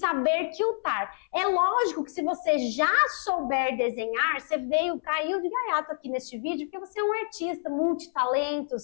quiltar. É lógico que se você já souber desenhar, você caiu de gaiato aqui neste vídeo, porque você é um artista,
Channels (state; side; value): silent; right; 60 dB below the other